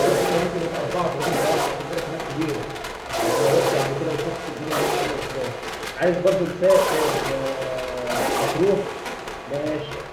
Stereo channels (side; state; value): both; identical; correlation 1.00